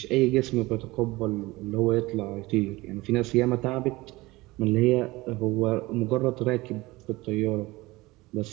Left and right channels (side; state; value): left; quieter; 20.8 dB